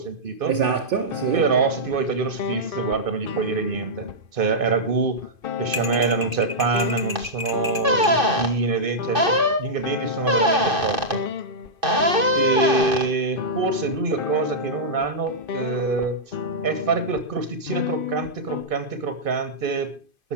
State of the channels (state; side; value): late; left; 2.5 ms